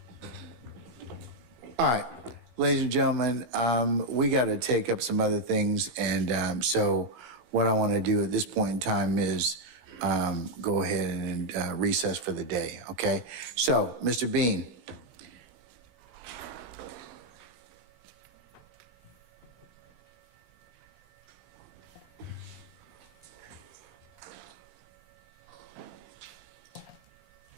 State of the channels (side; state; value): left; late; 17 ms